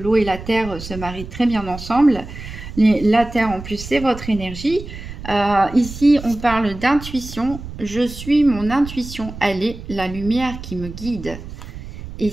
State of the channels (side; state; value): right; noise; rumble, 12 dB below the sound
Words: et la terre se marient très bien ensemble. La terre en plus c'est votre énergie. Ici on parle d'intuition. Je suis mon intuition, elle est la lumière qui me guide.